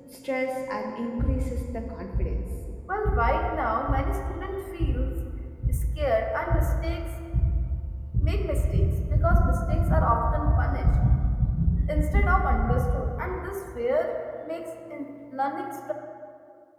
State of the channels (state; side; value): identical; both; correlation 1.00